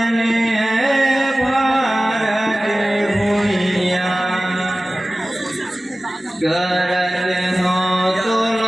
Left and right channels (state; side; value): normal; both; correlation 0.97